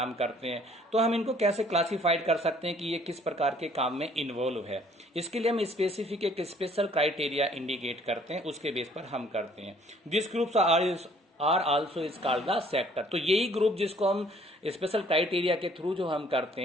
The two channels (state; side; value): normal; both; correlation 0.59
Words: करते हैं, तो हम इनको कैसे क्लासिफाइड कर सकते हैं कि ये किस प्रकार के काम में इन्वॉल्व है। इसके लिए हम स्पेसिफिक एक स्पेशल क्राइटेरिया इंडिकेट करते हैं, उसके बेस पर हम करते हैं। This groups are also is called the sector. तो यही ग्रुप जिसको हम स्पेशल क्राइटेरिया के थ्रू जो हम करते